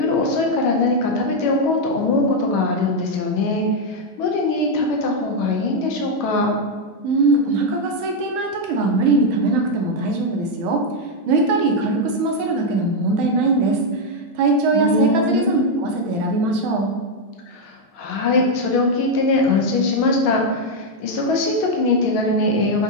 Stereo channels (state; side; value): normal; both; correlation 0.01